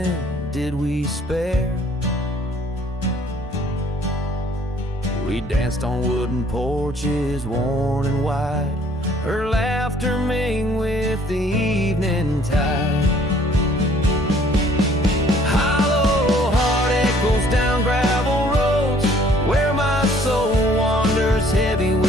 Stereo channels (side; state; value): both; normal; correlation 0.59